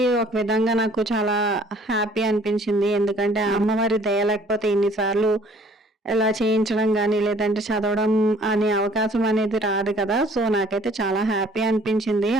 ఒక విధంగా నాకు చాలా హ్యాపీ అనిపించింది. ఎందుకంటే అమ్మవారి దయ లేకపోతే ఇన్నిసార్లు ఇలా చేయించడం కానీ లేదంటే చదవడం అనే అవకాశం అనేది రాదు కదా. సో నాకైతే చాలా హ్యాపీ అనిపించింది.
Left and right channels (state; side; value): normal; both; correlation 0.56